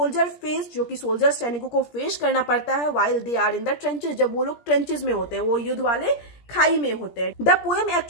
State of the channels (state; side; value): late; right; 17 ms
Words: फेस, जो कि सोल्जर सैनिकों को फेस करना पड़ता है while they are in the trenches, जब वो लोग ट्रेंचेस में होते हैं, वो युद्ध वाले खाई में होते हैं। The poem